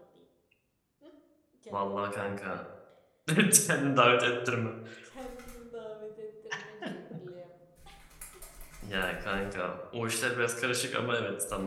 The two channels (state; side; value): identical; both; correlation 1.00